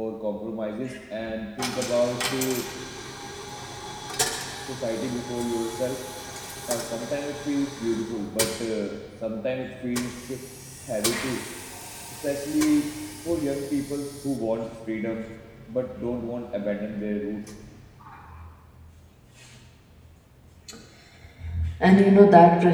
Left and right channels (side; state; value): both; identical; correlation 1.00